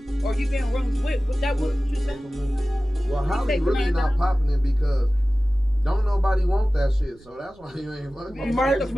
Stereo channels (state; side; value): noise; right; rumble, 27 dB below the sound